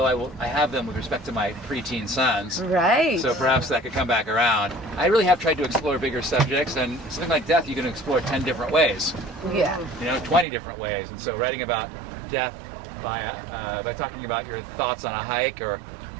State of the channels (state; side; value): drops out; left; at 10.5 s